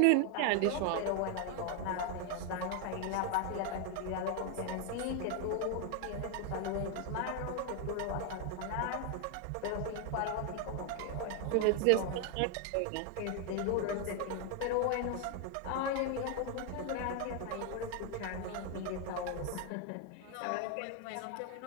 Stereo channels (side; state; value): both; different; correlation 0.01